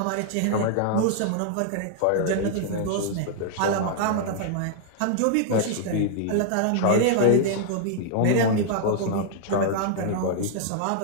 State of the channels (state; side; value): different; both; correlation -0.01